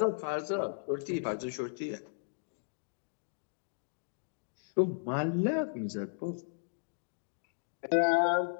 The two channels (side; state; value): right; silent; digital silence